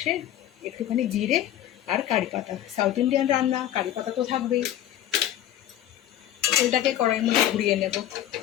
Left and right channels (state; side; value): quieter; right; 12.3 dB